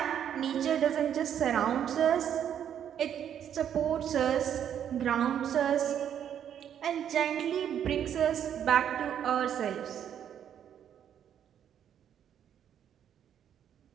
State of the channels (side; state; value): left; quieter; 9.4 dB